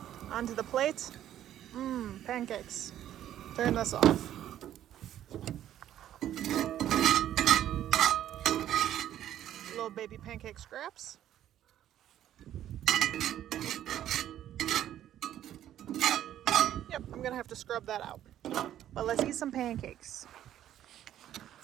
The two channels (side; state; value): left; quieter; 11.6 dB